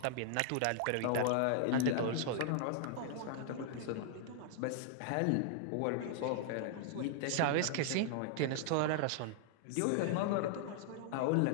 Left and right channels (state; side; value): different; both; correlation -0.01